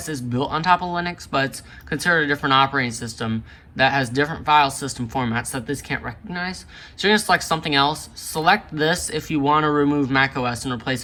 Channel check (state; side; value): identical; both; correlation 1.00